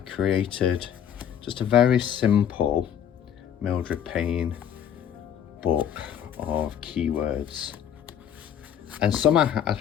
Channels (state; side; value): quieter; right; 9.3 dB